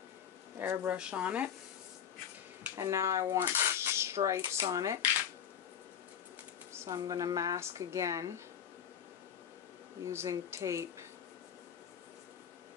airbrush on it. And now I want stripes on it. So I'm going to mask again using tape.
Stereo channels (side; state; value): right; quieter; 8.6 dB